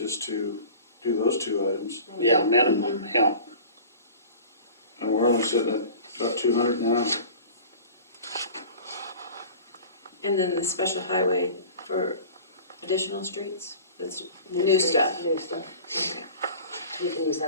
to do those two items. Yeah, minimum, yeah. And we're only sitting at about 200 now. And then the special highway for additional streets, that's new streets, stuff. New stuff. Okay. We can use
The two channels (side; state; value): both; inverted; correlation -0.40